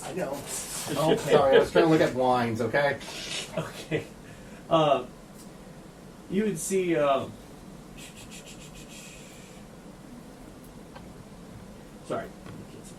I know. Okay. Sorry, I was trying to look at wines. Okay. Okay. You would see. Sorry.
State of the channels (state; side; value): identical; both; correlation 1.00